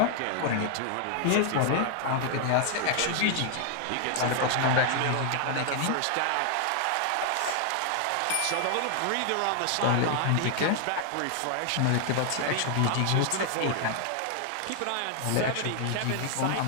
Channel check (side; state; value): both; different; correlation 0.00